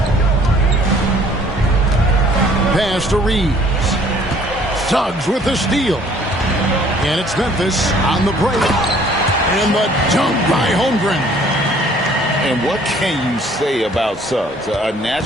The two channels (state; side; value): normal; both; correlation 0.57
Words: Pass to Reeves. Suggs with the steal. And it's Memphis on the break. And the dunk by Holmgren. And what can you say about Suggs? A